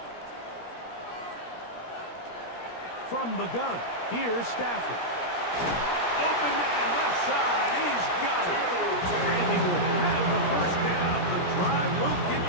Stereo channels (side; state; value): right; late; 17 ms